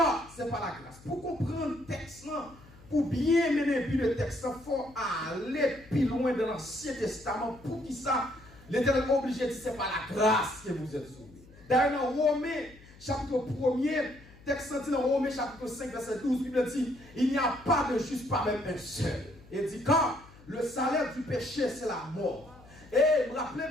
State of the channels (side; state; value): left; noise; hum, 23 dB below the sound